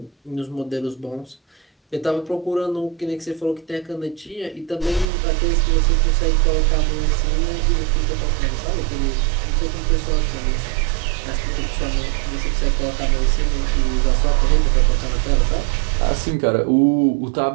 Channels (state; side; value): drops out; left; at 5.1 s